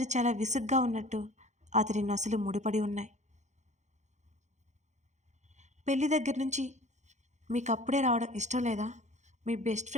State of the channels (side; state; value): left; late; 0.34 ms